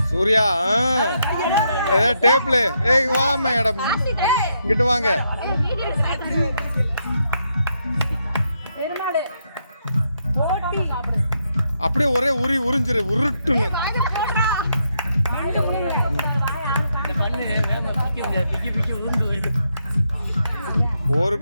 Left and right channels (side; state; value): both; inverted; correlation -0.79